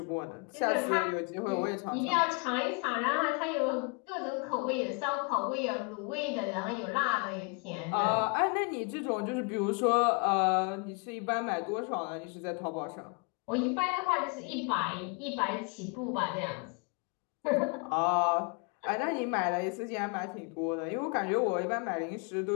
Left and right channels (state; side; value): quieter; right; 32.6 dB